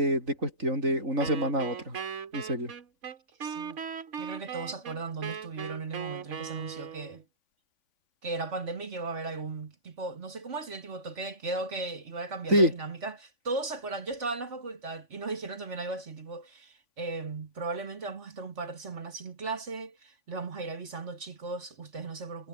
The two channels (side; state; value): left; late; 3.5 ms